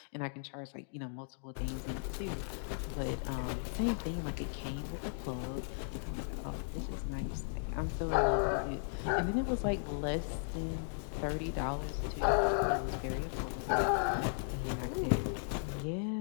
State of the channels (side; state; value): right; silent; digital silence